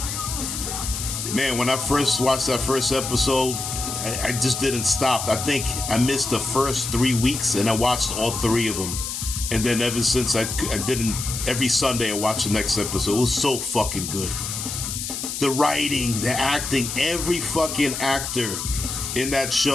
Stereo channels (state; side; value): noise; left; hiss, 5 dB below the sound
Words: man, when I first watched that first episode, I just didn't stop. I think I missed the first 3 weeks, and I watched all 3 of them. And then ever since, I didn't. Every Sunday I watched the next episode. It was so fucking good. The writing, the acting, every fucking actor in that